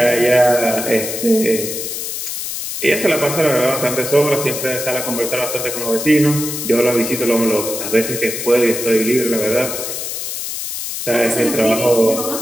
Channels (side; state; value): left; noise; hiss, 5 dB below the sound